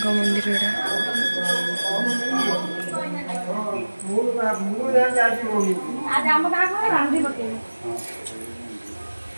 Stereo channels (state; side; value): inverted; both; correlation -1.00